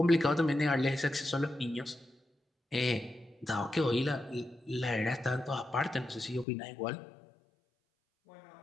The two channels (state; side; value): drops out; right; at 6.5 s